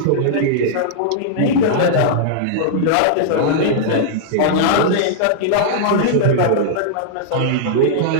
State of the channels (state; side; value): different; both; correlation -0.01